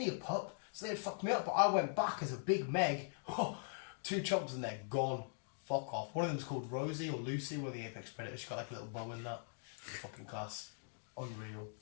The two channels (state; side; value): silent; right; digital silence